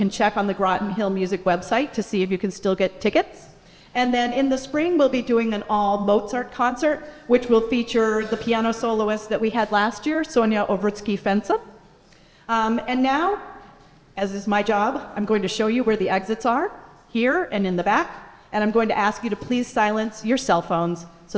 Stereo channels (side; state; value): both; identical; correlation 1.00